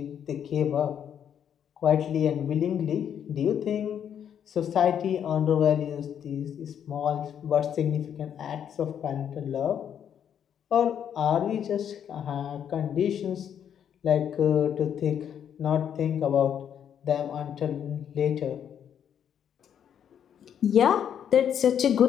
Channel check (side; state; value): right; quieter; 8.9 dB